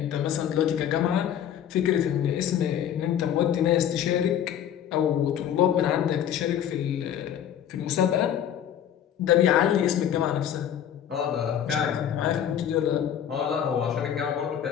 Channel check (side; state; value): right; quieter; 9.8 dB